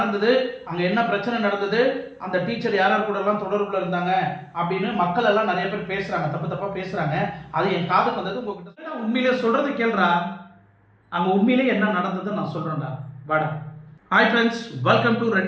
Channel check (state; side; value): identical; both; correlation 1.00